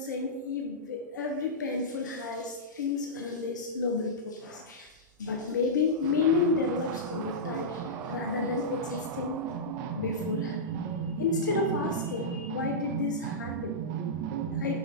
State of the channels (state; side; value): normal; both; correlation -0.14